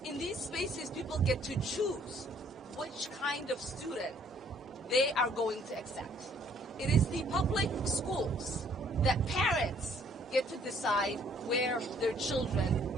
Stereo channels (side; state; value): both; normal; correlation 0.62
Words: in these spaces people get to choose which kind of student they are going to accept. It is the public schools that parents get to decide where their